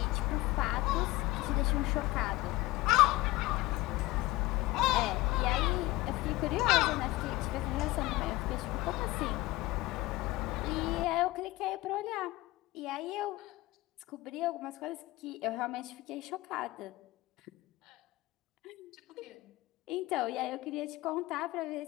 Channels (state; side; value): quieter; right; 19.5 dB